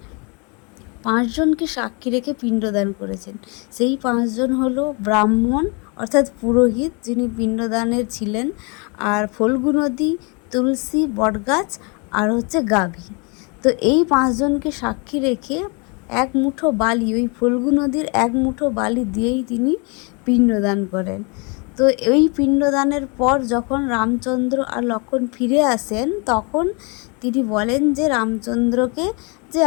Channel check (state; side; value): quieter; right; 32.4 dB